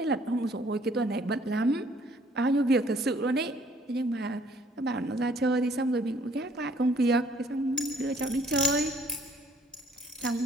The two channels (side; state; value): both; normal; correlation 0.60